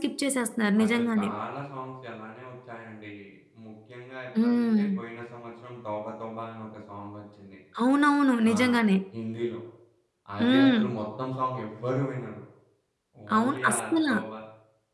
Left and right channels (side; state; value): both; identical; correlation 1.00